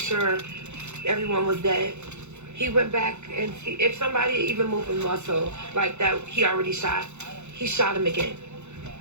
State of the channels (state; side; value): late; left; 0.82 ms